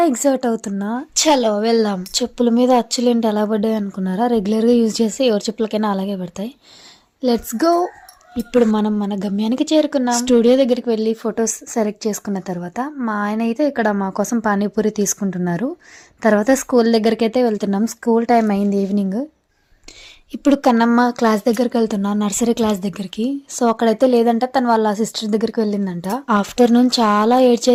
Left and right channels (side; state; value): both; identical; correlation 1.00